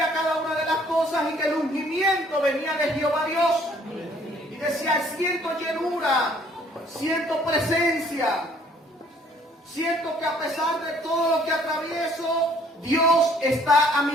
cada una de las cosas y que el ungimiento venía de Jehová Dios. Y decía, siento llenura, siento presencia, siento que a pesar de todo lo que atravieso, Dios está a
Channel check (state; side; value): normal; both; correlation 0.60